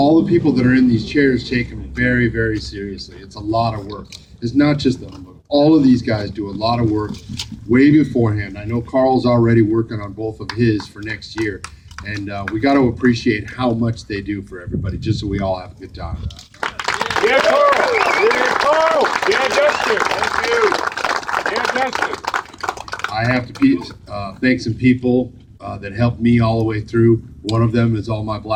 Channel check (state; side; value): identical; both; correlation 1.00